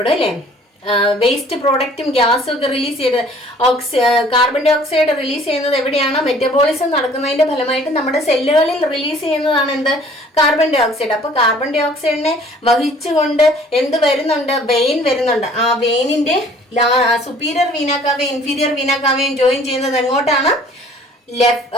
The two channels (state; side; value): normal; both; correlation 0.53